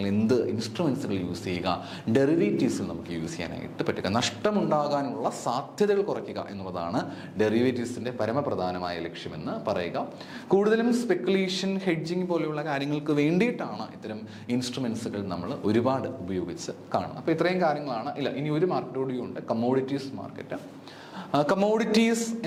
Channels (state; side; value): identical; both; correlation 1.00